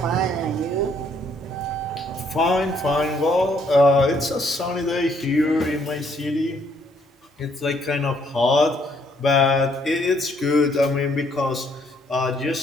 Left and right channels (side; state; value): both; normal; correlation 0.68